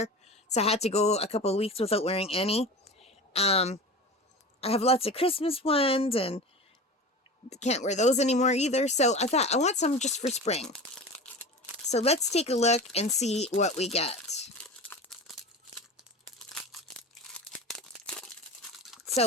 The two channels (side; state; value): both; normal; correlation 0.32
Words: so I had to go a couple of weeks without wearing any. I have lots of Christmas ones, and can't wear those anymore either, so I thought I want some just for spring. So let's take a look and see what we get.